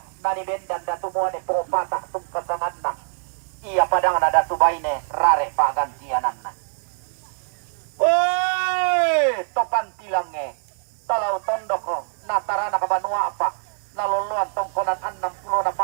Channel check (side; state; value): left; silent; 63 dB below the other